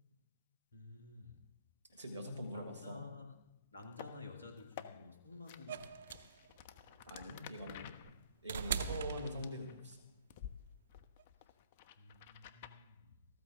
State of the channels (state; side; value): inverted; both; correlation -0.64